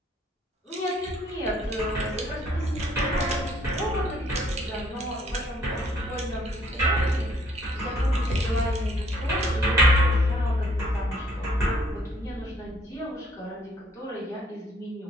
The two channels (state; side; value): normal; both; correlation 0.63